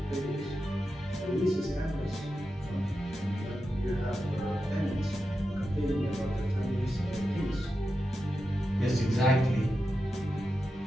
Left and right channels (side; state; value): both; normal; correlation 0.89